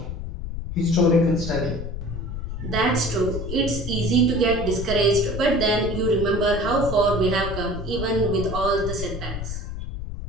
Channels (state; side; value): noise; left; rumble, 6 dB below the sound